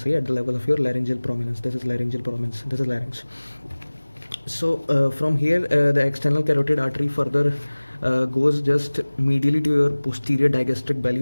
at the level of your laryngeal prominence. This is laryngeal prominence, this is larynx. So from here the external carotid artery further goes just medially to your posterior digastric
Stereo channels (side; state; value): both; inverted; correlation -1.00